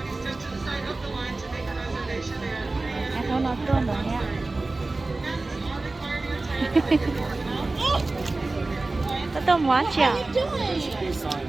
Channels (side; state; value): left; quieter; 3.2 dB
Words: em không nói tua nữa nha có tôm quá chả